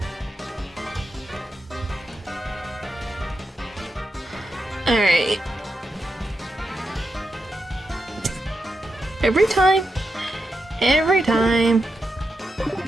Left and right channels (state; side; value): normal; both; correlation 0.87